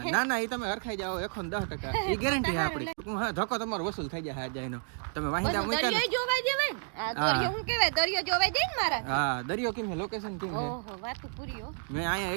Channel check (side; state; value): left; silent; 56 dB below the other